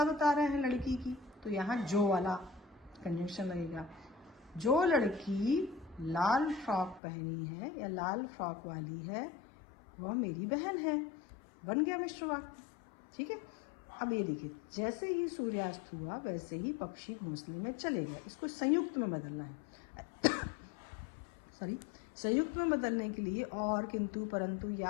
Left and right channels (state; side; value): drops out; right; at 7.0 s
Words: बता रहे हैं लड़की की, तो यहाँ जो वाला कंजंक्शन लगेगा। जो लड़की लाल फ्रॉक पहनी है या लाल फ्रॉक वाली है वह मेरी बहन है, बन गया मिश्र वाक्य। ठीक है, अब ये देखिए, जैसे ही सूर्यास्त हुआ वैसे ही पक्षी घोंसले में चले गए। इसको संयुक्त में बदलना है। सॉरी, संयुक्त में बदलने के लिए और, किंतु, परंतु या